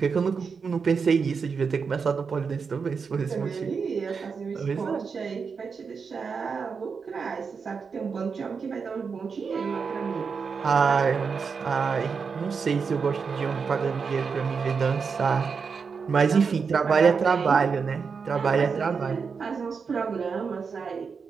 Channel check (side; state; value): left; quieter; 5.6 dB